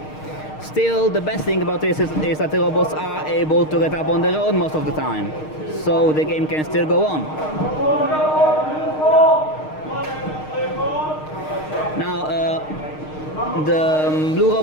Still, the best thing about this is that the robots are able to get up on their own most of the time, so the game can still go on. Now, the blue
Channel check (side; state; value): right; late; 6.5 ms